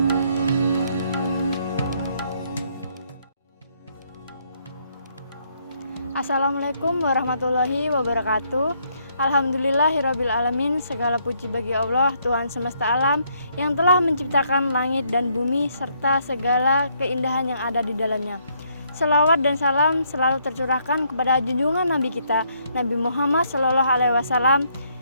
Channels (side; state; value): both; inverted; correlation -0.71